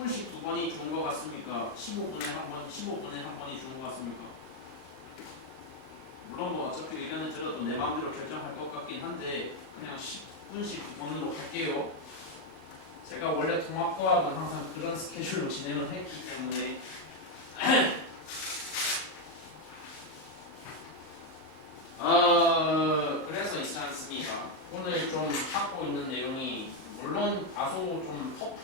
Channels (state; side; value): late; right; 39 ms